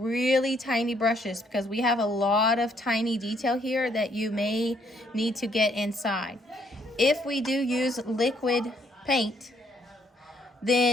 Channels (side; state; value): both; normal; correlation 0.69